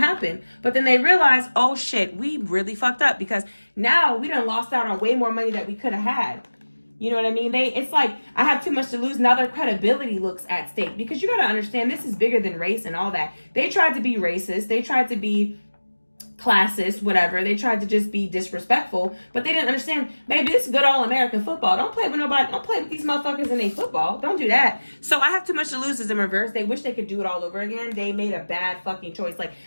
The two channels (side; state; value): both; inverted; correlation -1.00